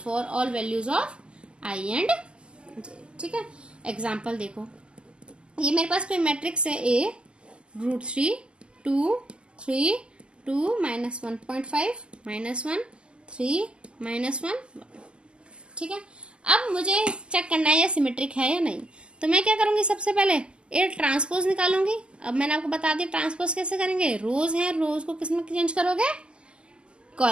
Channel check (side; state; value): left; late; 0.050 ms